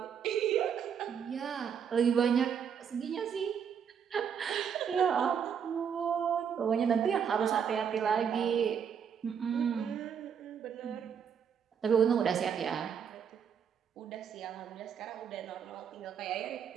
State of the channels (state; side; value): quieter; left; 7.6 dB